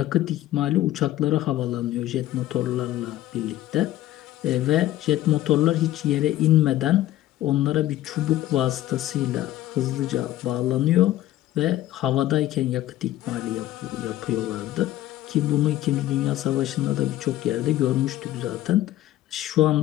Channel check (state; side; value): quieter; right; 14.2 dB